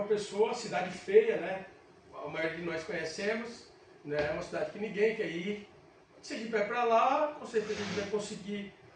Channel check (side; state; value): both; identical; correlation 1.00